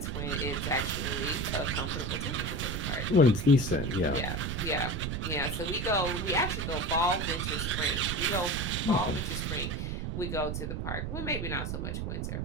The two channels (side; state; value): right; noise; rumble, 2 dB below the sound